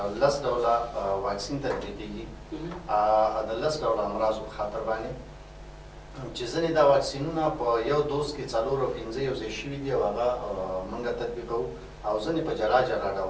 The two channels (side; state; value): both; identical; correlation 1.00